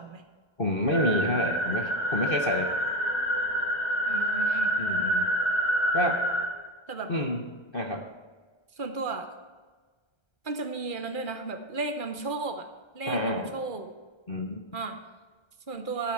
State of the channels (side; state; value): right; late; 1.3 ms